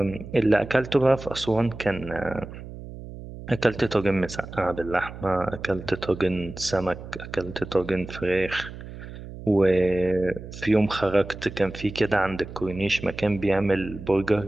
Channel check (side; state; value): right; noise; hum, 13 dB below the sound